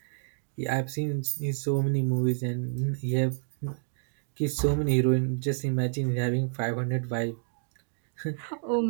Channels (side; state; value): left; silent; digital silence